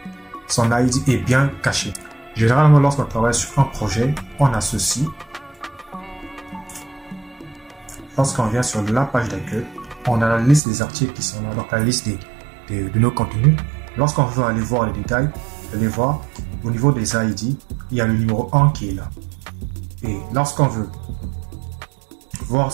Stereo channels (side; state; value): left; drops out; at 10.6 s